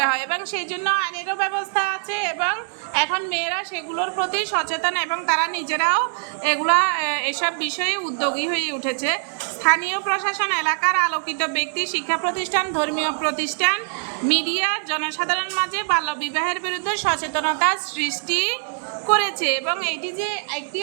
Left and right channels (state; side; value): silent; left; digital silence